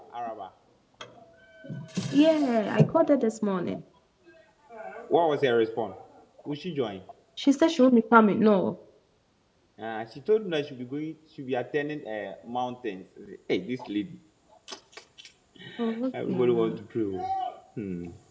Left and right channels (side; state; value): both; identical; correlation 1.00